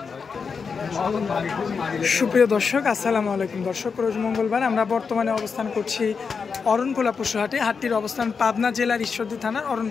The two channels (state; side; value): quieter; right; 5.5 dB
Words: সুপ্রিয় দর্শক আসসালামু আলাইকুম। দর্শক, রোজ মঙ্গলবার আমরা বর্তমানে অবস্থান করছি অরণখোলা পশুহাটে। হাটটির অবস্থান পাবনা জেলার ঈশ্বরদী থানার